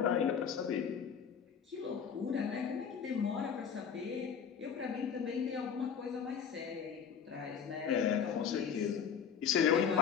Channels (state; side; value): quieter; right; 7.3 dB